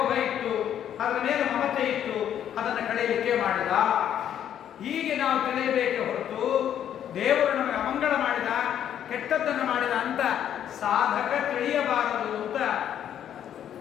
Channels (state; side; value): quieter; right; 10.0 dB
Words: ಇತ್ತು, ಅದರ ಮೇಲೆ ಮಮತೆ ಇತ್ತು, ಅದನ್ನು ಕಳೆಯಲಿಕ್ಕೆ ಮಾಡಿದ. ಹೀಗೆ ನಾವು ತಿಳಿಯಬೇಕೆ ಹೊರತು ದೇವರು ನಮಗೆ ಅಮಂಗಳ ಮಾಡಿದ, ಕೆಟ್ಟದ್ದನ್ನು ಮಾಡಿದ ಅಂತ ಸಾಧಕ ತಿಳಿಯಬಾರದು ಅಂತ